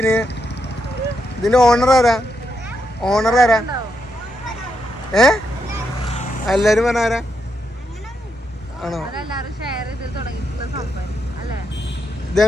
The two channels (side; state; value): both; normal; correlation 0.81